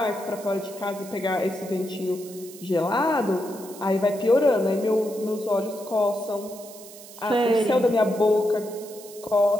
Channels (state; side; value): noise; right; hiss, 17 dB below the sound